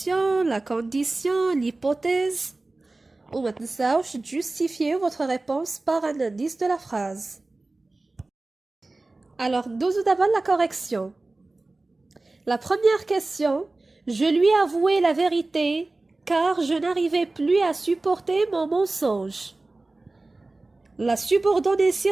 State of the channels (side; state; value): left; quieter; 3.1 dB